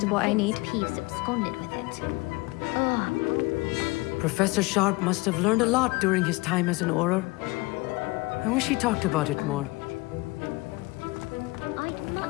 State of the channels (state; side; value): quieter; right; 23.9 dB